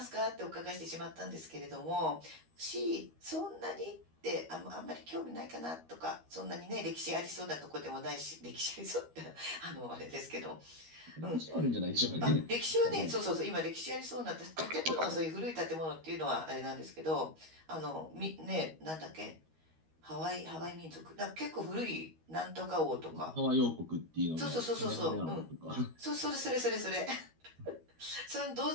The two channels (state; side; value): late; left; 13 ms